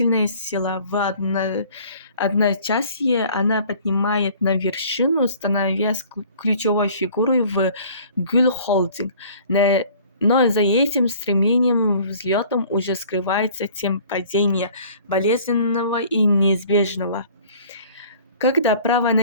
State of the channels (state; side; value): inverted; both; correlation -0.51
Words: сила. В одночасье она поднимает на вершину, становясь ключевой фигурой в Гюль Холдинг. Но за этим стремлением взлетом уже скрывается тем падения, болезненного и неизбежного. Когда право